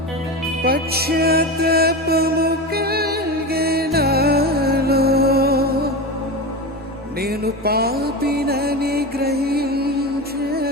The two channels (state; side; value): normal; both; correlation 0.23